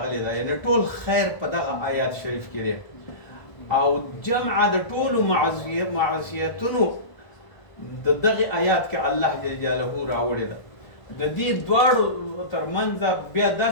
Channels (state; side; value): late; right; 1.5 ms